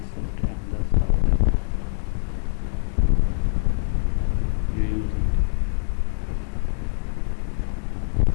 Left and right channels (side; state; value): right; silent; digital silence